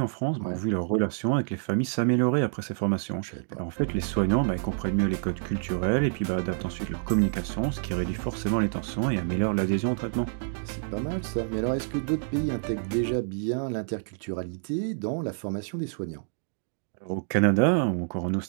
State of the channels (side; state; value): left; silent; digital silence